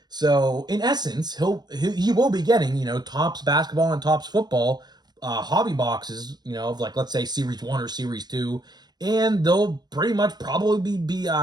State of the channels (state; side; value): late; left; 0.20 ms